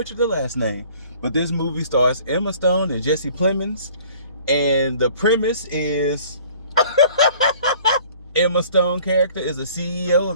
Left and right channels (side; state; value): both; inverted; correlation -0.52